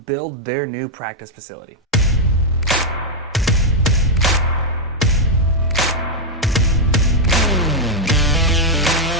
their new practice facility.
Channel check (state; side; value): normal; both; correlation -0.02